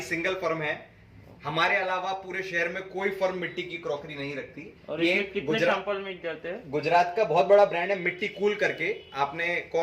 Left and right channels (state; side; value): identical; both; correlation 1.00